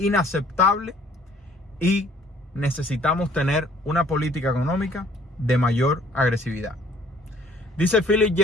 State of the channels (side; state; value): both; normal; correlation 0.57